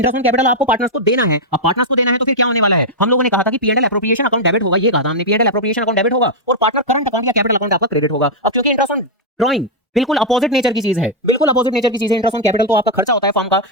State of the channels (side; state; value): both; normal; correlation -0.04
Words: on capital आपको पार्टनर्स को देना है। अब पार्टनर्स को देना है तो फिर क्या होने वाला है? हम लोगों ने कहा था कि पी&एल एप्रोप्रिएशन अकाउंट डेबिट होगा, ये कहा था हमने, पी&एल एप्रोप्रिएशन अकाउंट डेबिट होगा और पार्टनर करंट अकाउंट या कैपिटल अकाउंट आपका क्रेडिट होगा। अब क्योंकि इंटरेस्ट ऑन ड्राइंग बिल्कुल अपोजिट नेचर की चीज है, बिल्कुल अपोजिट नेचर की चीज है। इंटरेस्ट ऑन कैपिटल तो आपका खर्चा होता है फॉर्म का,